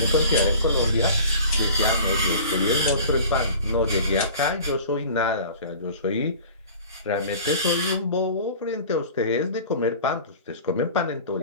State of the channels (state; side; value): inverted; both; correlation -0.42